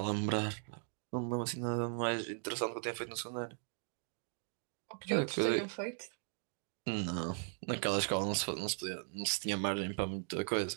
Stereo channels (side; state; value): left; silent; 52 dB below the other